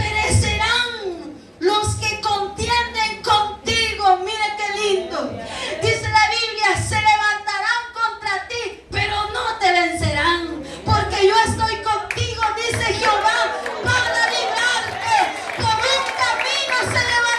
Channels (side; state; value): both; identical; correlation 1.00